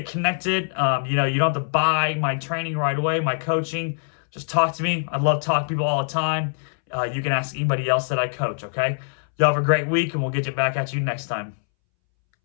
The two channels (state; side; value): silent; right; 63 dB below the other